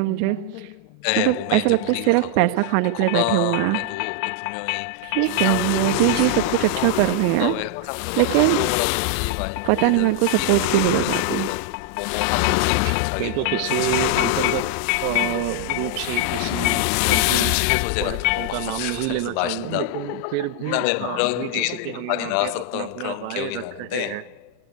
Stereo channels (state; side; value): different; both; correlation 0.00